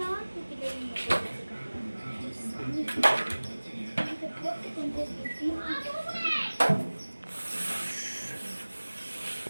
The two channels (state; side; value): inverted; both; correlation -1.00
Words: தூக்கிட்டு போட்டு கொஞ்சம்